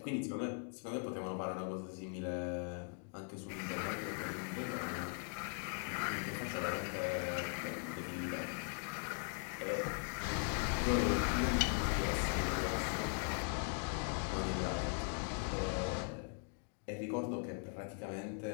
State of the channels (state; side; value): silent; right; 51 dB below the other